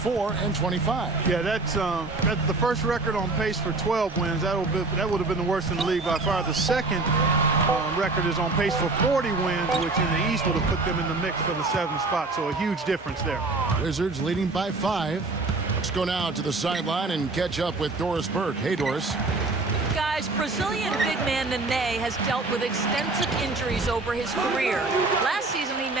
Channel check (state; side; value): quieter; left; 3.5 dB